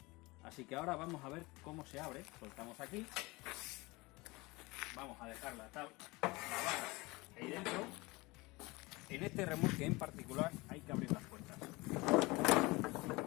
Así que ahora vamos a ver cómo se abre. Soltamos aquí, vamos a dejar la barra ahí dentro. En este remolque en particular hay que abrir las puertas.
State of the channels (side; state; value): right; quieter; 23.3 dB